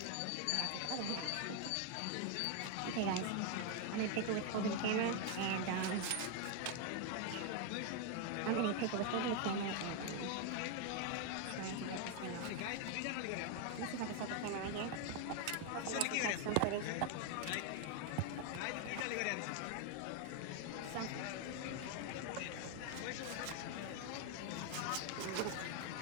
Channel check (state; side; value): different; both; correlation 0.01